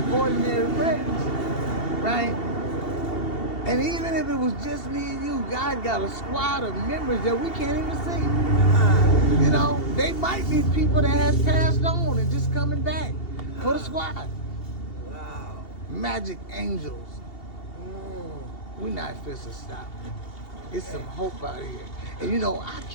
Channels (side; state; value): right; late; 2.7 ms